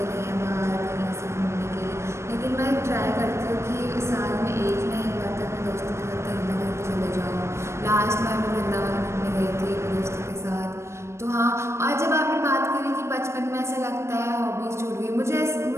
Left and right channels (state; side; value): late; left; 0.13 ms